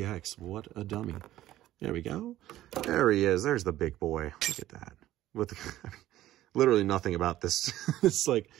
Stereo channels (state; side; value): quieter; left; 14.2 dB